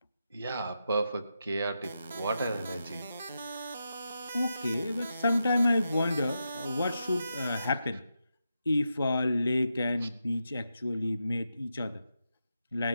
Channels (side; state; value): both; inverted; correlation -0.87